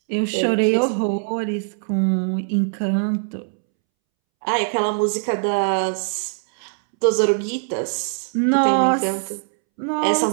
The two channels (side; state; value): left; silent; 65 dB below the other